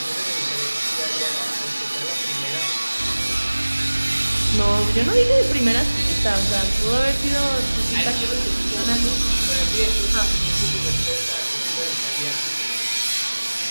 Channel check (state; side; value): inverted; both; correlation -1.00